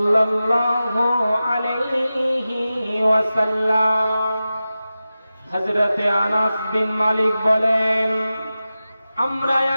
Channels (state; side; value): inverted; both; correlation -0.94